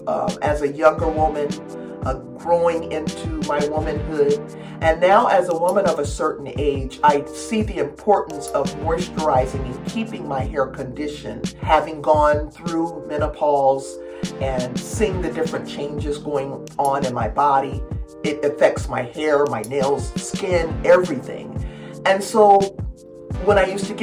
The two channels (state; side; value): identical; both; correlation 1.00